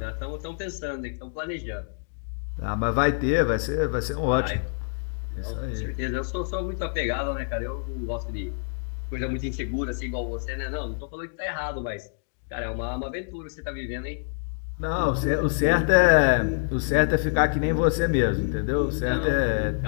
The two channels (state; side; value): silent; right; digital silence